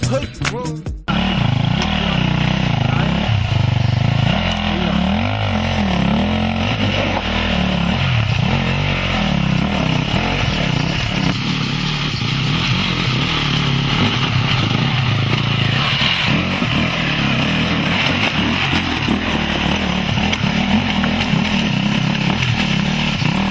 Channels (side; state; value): both; identical; correlation 1.00